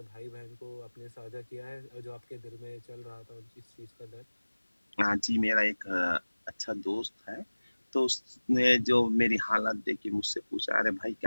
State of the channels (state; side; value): inverted; both; correlation -1.00